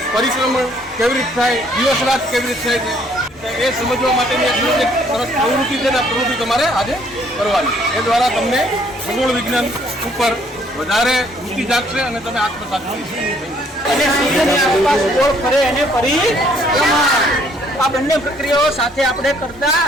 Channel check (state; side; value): normal; both; correlation 0.64